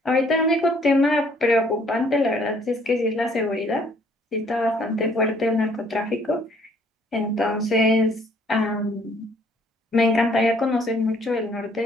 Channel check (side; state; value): both; normal; correlation 0.62